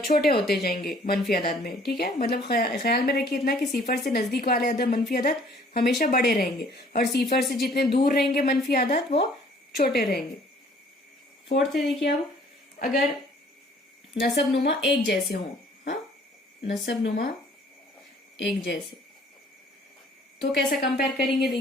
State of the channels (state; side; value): normal; both; correlation 0.57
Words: होते जाएंगे मनफी अदद में। ठीक है, मतलब ख्याल में रखिए इतना कि सिफर से नजदीक वाले अदद मनफी अदद हमेशा बड़े रहेंगे और सिफर से जितने दूर रहेंगे मनफी अदद वो छोटे रहेंगे। फोर्थ है देखिए, अब अगर नसब नुमा एक जैसे हों, हाँ, नसब नुमा एक जैसे, तो कैसा कंपेयर करेंगे,